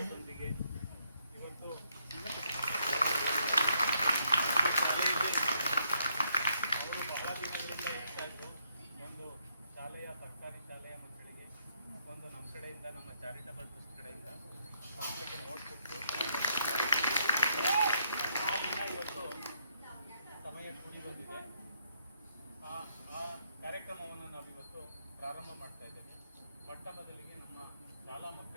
ಇವತ್ತು ಅವರು ಬಹಳ ದಿನಗಳಿಂದ ಹೇಳ್ತಾ ಇದ್ರು, ಒಂದು ಶಾಲೆಯ ಸರ್ಕಾರಿ ಶಾಲೆಯ ಮಕ್ಕಳಿಗೆ ಒಂದು ನಮ್ಮ ಕಡೆಯಿಂದ, ನಮ್ಮ ಚಾರಿಟಬಲ್ ಟ್ರಸ್ಟ್ ಕಡೆಯಿಂದ ಮಕ್ಕಳಿಗೆ ನೋಟ್ಬುಕ್ಕು ಆ ದಿನ ಇವತ್ತು ಸಮಯ ಕೂಡಿ ಬಂದಿದೆ. ಆ ಕಾರ್ಯಕ್ರಮವನ್ನು ನಾವಿವತ್ತು ಪ್ರಾರಂಭ ಮಾಡ್ತಾ ಇದ್ದೇವೆ. ಮೊಟ್ಟ ಮೊದಲಿಗೆ ನಮ್ಮ ಶಾಲಾ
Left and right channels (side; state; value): both; inverted; correlation -0.74